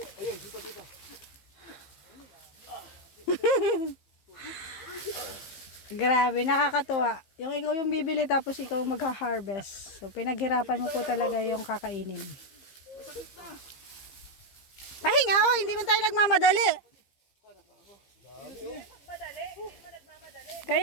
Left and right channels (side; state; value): right; late; 15 ms